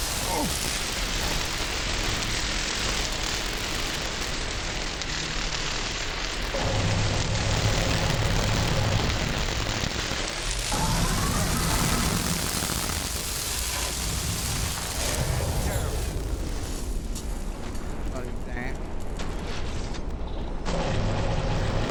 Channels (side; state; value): both; identical; correlation 1.00